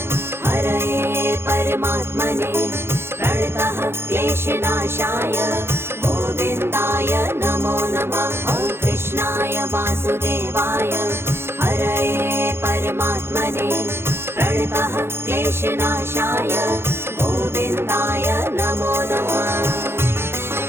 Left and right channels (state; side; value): late; left; 0.12 ms